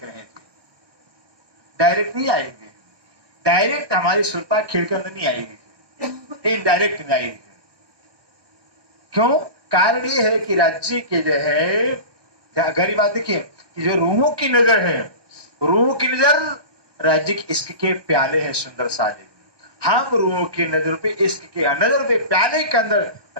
रहे हैं। डायरेक्ट नहीं आएंगे, डायरेक्ट हमारी सुरता खेल के अंदर नहीं आएगी, इनडायरेक्ट नहीं आएगी। क्यों? कारण ये है कि राज्य के जो है, गहरी बात देखिए, कि जो रूहों की नजर है, रूहों की नजर राज्य के इश्क के प्याले हैं सुंदर साजे। हम रूहों की नजर पे, इश्क के नजर पे, प्याले के अंदर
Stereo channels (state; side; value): late; left; 1.2 ms